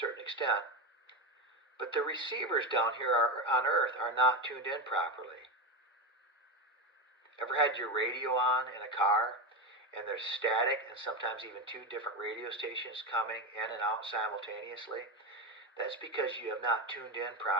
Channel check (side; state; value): both; normal; correlation 0.16